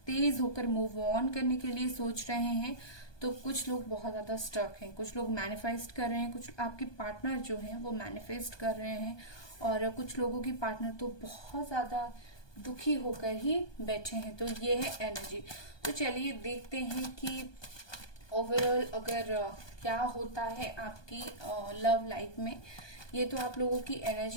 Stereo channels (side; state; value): right; late; 1.2 ms